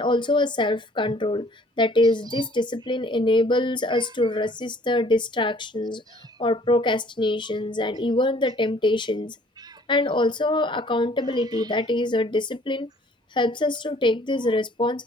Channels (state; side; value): normal; both; correlation 0.57